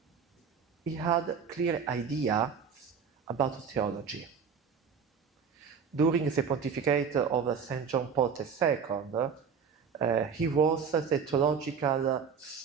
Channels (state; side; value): quieter; left; 6.4 dB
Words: he had clear ideas about theology. During the pontificate of St. John Paul II, he was the theological